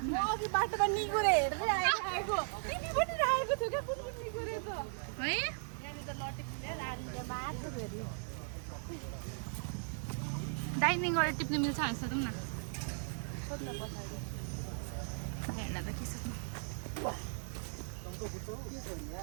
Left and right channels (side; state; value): left; silent; digital silence